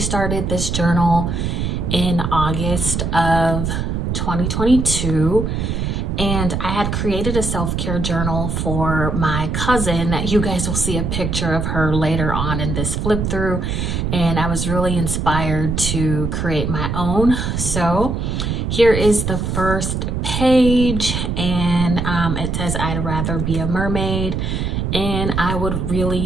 this journal in August of 2022, and I had created a self-care journal for my cousin that you guys will see a picture of her later on in this flip through, and I was really inspired to create my own. So here is the first page, and it says, "I'd rather be a mermaid." And I would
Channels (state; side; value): noise; right; rumble, 1 dB below the sound